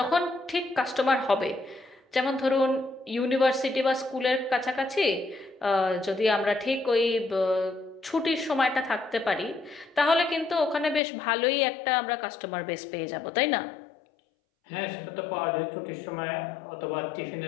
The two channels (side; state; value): right; drops out; at 11.0 s